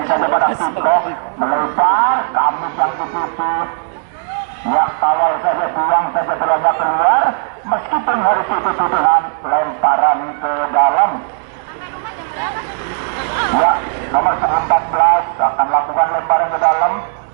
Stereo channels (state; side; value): silent; left; digital silence